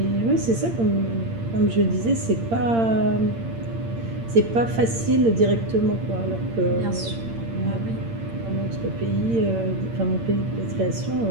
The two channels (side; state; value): left; late; 8.8 ms